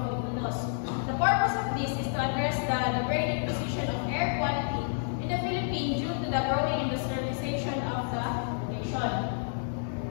Filipinos. The purpose of this is to address the degrading position of air quality in the Philippines due to the growing industrialization of the nation.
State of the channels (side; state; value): right; silent; 58 dB below the other